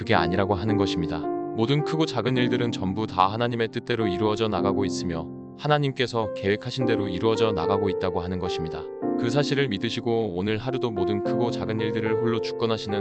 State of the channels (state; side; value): identical; both; correlation 1.00